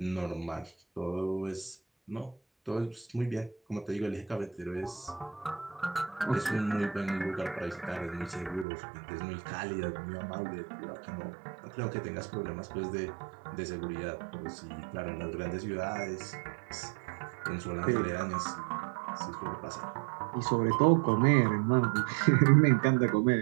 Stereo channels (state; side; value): drops out; left; at 8.7 s